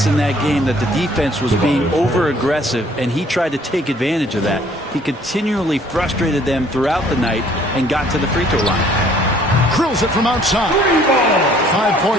in that game that the defense was being over-aggressive, and he tried to take advantage of that. He continually frustrated them throughout the night and got to the free throw line. Drills it from outside. 5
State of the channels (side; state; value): both; normal; correlation 0.59